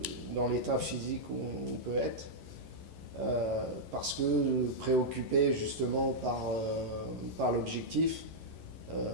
dans l'état physique où on peut être. Parce que préoccupé justement par l'objectif,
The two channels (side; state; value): left; late; 11 ms